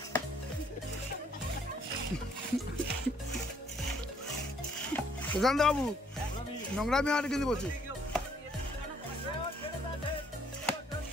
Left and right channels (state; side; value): normal; both; correlation 0.66